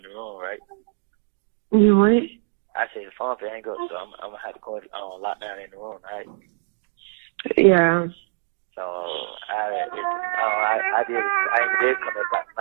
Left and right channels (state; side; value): silent; left; 61 dB below the other